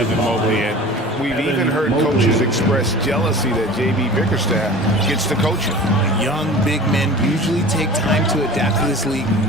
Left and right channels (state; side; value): normal; both; correlation 0.40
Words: Mobley. And we've even heard coaches express jealousy that J.B. Bickerstaff gets to coach him. Young big men usually take time to adapt to this league,